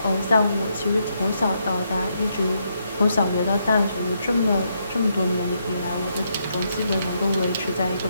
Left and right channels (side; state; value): both; inverted; correlation -0.78